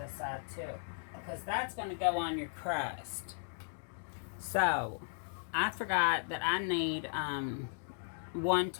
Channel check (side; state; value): right; silent; digital silence